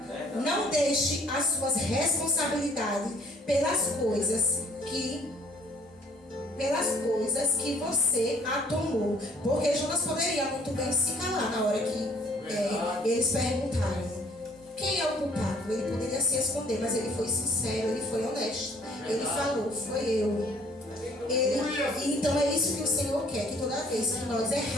Não deixe as suas responsabilidades pelas coisas que você a tomou. Porque Jonas poderia muito bem se calar na hora que eles perguntaram quem é o culpado. Ele poderia se esconder, mas ele foi sincero, ele foi honesto. Ele falou, foi eu. Então é isso que o Senhor quer, que toda vez que nós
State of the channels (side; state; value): both; normal; correlation 0.59